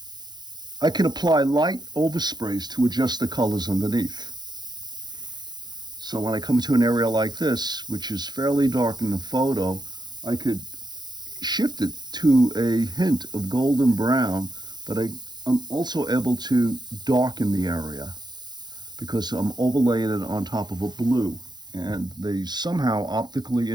I can apply light oversprays to adjust the colors underneath. So when I come to an area like this, which is fairly dark in the photo, I could shift it to a hint of golden brown, but I'm also able to darken the area because I'm overlaying it on top of a blue, and they somehow optically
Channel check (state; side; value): late; left; 0.21 ms